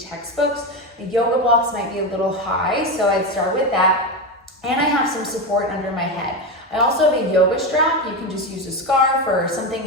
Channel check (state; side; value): normal; both; correlation 0.15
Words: The yoga blocks might be a little high, so I'd start with that. And I have some support under my head. I also have a yoga strap. You can just use a scarf or something